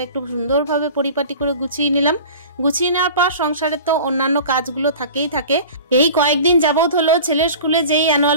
একটু সুন্দরভাবে পরিপাটি করে গুছিয়ে নিলাম। গুছিয়ে নেওয়ার পর সংসারে তো অন্যান্য কাজগুলো থাকেই থাকে। এই কয়েকদিন যাবত হলো ছেলের স্কুলে যেই অ্যানুয়াল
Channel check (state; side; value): inverted; both; correlation -0.39